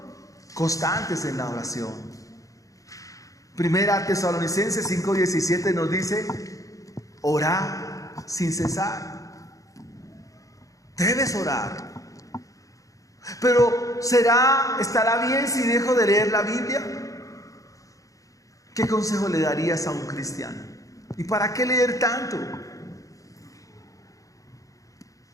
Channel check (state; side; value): late; right; 0.16 ms